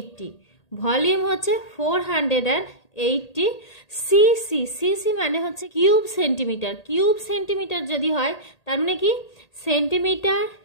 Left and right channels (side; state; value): right; late; 1.8 ms